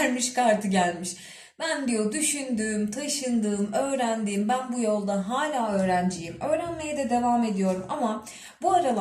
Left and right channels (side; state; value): both; identical; correlation 1.00